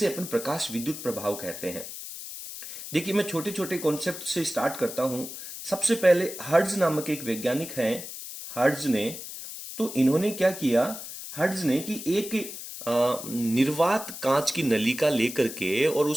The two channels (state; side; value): noise; left; hiss, 10 dB below the sound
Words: अपन प्रकाश विद्युत प्रभाव कहते हैं। देखिए मैं छोटे छोटे कॉन्सेप्ट से स्टार्ट करता हूं। सबसे पहले हर्ट्ज नामक एक वैज्ञानिक हैं, हर्ट्ज ने, तो इन्होंने क्या किया, हर्ट्ज ने कि एक निर्वात कांच की नलिका लेकर के और